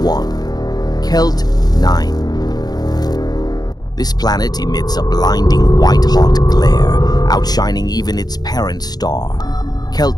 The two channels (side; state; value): right; late; 0.19 ms